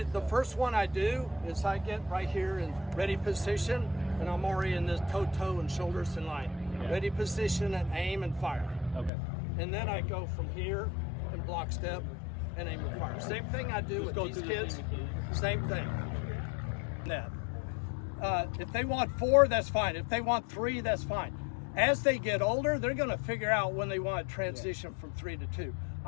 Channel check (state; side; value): drops out; right; at 9.1 s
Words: the step? first one I do is I get right here in ready position, and I'm already in this toe and shoulders in line. Yeah. Ready position and aim and fire. Okay. And then I go from here and block step and aim and fire. Same thing I do Just with go these through the kids. same mechanics. Same thing. Net. If they want 4, that's fine. If they want 3, that's fine. As they get older, they're going to figure out when they want to transition from 3 to 2.